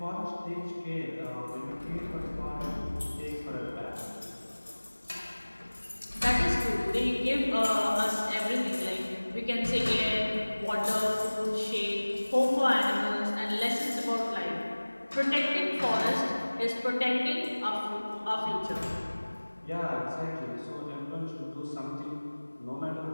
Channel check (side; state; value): both; inverted; correlation -1.00